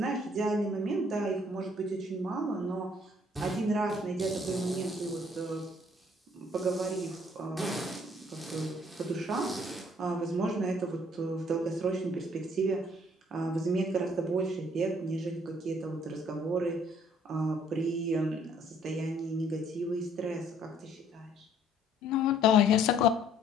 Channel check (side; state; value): both; normal; correlation 0.61